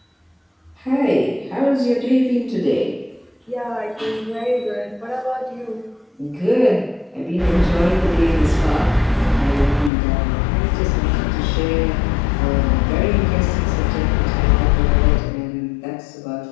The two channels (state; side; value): drops out; right; at 9.9 s